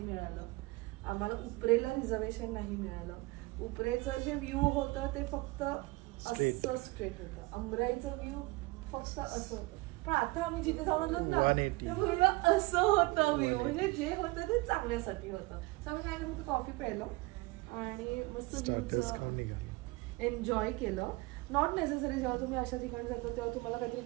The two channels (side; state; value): left; quieter; 23.1 dB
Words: आम्हाला उपरेला रिझर्वेशन नाही मिळालं. उपरेचं जे व्ह्यू होतं ते फक्त असं स्ट्रेट होतं, अंबराईचं व्ह्यू फक्त असं होतं. पण आता आम्ही जिथे जाऊन ना असं होतं व्ह्यू, म्हणजे जे होतं ते चांगल्यासाठी होतं. तर आम्ही काय करतो, कॉफी प्यायलो आणि मस्त व्ह्यूचं एन्जॉय केलं. नॉट नेसेसरी जेव्हा तुम्ही अशा ठिकाणी जाता तेव्हा तुम्हाला काहीतरी